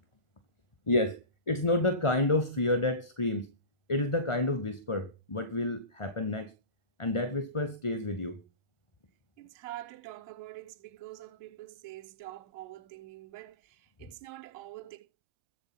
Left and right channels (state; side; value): late; right; 1.4 ms